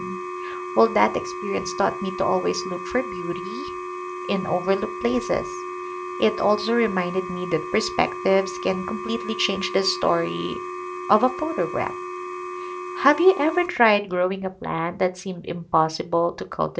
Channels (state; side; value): identical; both; correlation 1.00